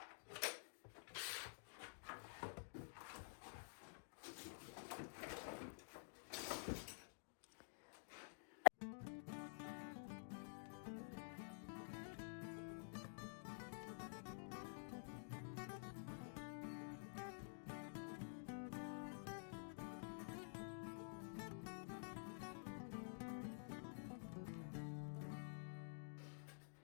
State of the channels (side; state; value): right; silent; digital silence